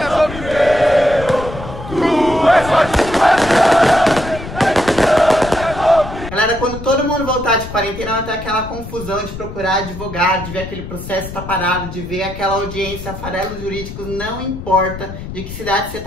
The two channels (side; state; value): left; noise; rumble, 11 dB below the sound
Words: Galera, quando todo mundo voltar de quarentena, vai ter aquela confusão de procurar advogado, de ver aquele processo tá parado, de ver aquela audiência. Farelos Jurídicos, não importa de que cidade você